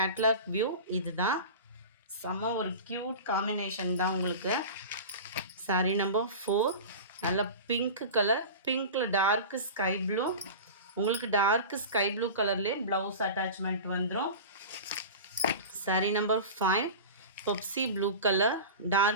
வியூ இது தான். செம்ம ஒரு க்யூட் காம்பினேஷன் தான் உங்களுக்கு. சாரி நம்பர் 4 நல்ல பிங்க் கலர், பிங்க்கில் டார்க்கு ஸ்கை ப்ளூ, உங்களுக்கு டார்க்கு ஸ்கை ப்ளூ கலர்லேயே ப்ளவுஸ் அட்டாச்மெண்ட் வந்துடும். Sari number 5 Pepsi blue colour,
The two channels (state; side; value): inverted; both; correlation -0.31